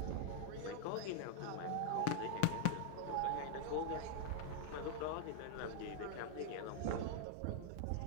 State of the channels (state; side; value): different; both; correlation 0.00